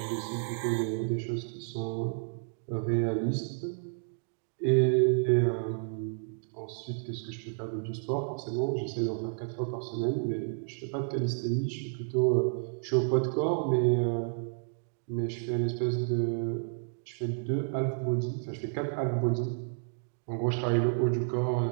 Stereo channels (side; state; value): left; silent; digital silence